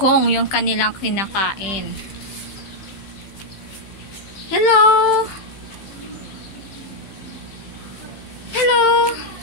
yung kanilang kinakain. Hello! Hello!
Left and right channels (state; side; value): late; right; 15 ms